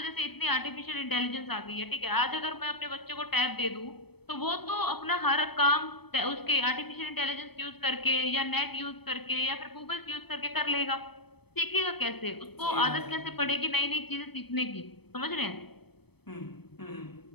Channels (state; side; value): late; right; 0.97 ms